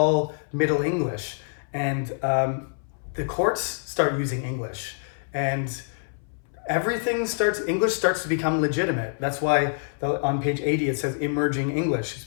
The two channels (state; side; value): silent; right; 61 dB below the other